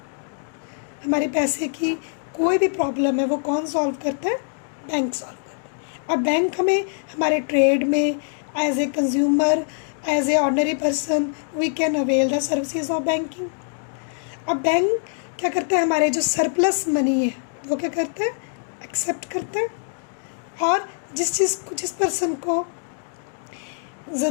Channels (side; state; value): right; silent; digital silence